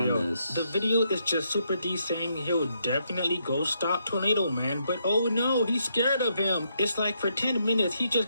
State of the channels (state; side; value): inverted; both; correlation -0.77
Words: this. The video is just Super D saying he'll definitely go stop Tornado Man, but oh no, he's scared of him. It's like for 10 minutes, he just